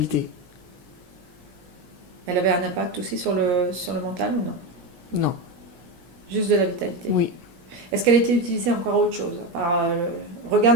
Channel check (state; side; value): late; left; 17 ms